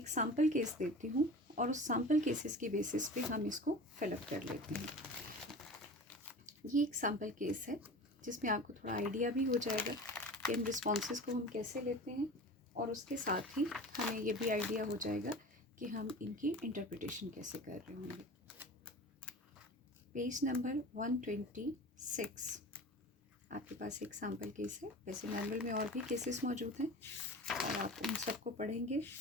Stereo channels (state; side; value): normal; both; correlation 0.35